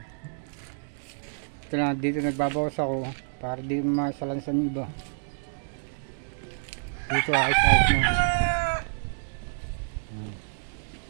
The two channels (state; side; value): silent; left; digital silence